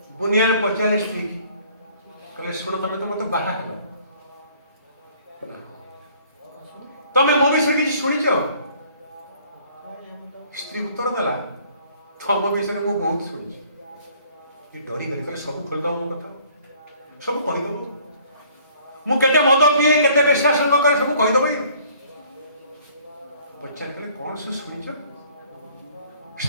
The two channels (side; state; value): both; inverted; correlation -0.57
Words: बुनियान पचारे स्त्री कहले शुण तुम तो मत बाहर तमें मो विषय किसी शुणिच स्त्री उत्तर देला तुम विषय में बहुत शुणी डरी गली कहले सब खोलदब मो कथा सब कहीदब मुझे मद पिए केते बेश्यासंग करे सब कहीदब पचार कहले कौन सब शुणिच